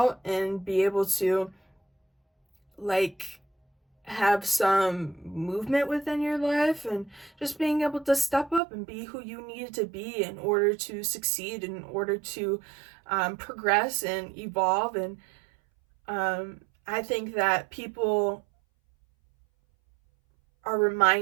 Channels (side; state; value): left; drops out; at 8.6 s